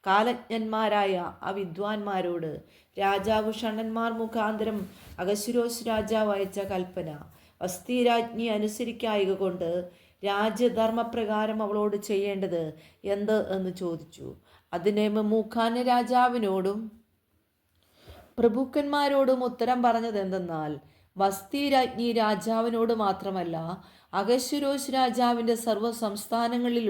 കാലജ്ഞന്മാരായ ആ വിദ്വാൻമാരോട് രാജാവ് ഷണ്ഡന്മാർ മുഖാന്തരം അഹശ്വേരോശ് രാജാവ് അയച്ച കൽപ്പന വസ്തി രാജ്ഞി അനുസരിക്കായക കൊണ്ട് രാജ്യധർമ്മപ്രകാരം അവളോട് ചെയ്യേണ്ടത് എന്ത് എന്ന് ചോദിച്ചു. അതിനെ മെമൂഖാൻ രാജാവിനോടും പ്രഭുക്കന്മാരോടും ഉത്തരം പറഞ്ഞത് എന്തെന്നാൽ, വസ്തി രാജ്ഞി രാജാവിനോട് മാത്രമല്ല അഹശ്വേരോശ് രാജാവിൻ്റെ സർവ്വ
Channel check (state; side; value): identical; both; correlation 1.00